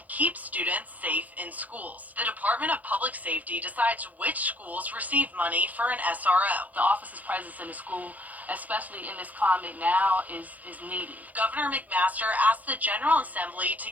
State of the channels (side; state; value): left; late; 0.079 ms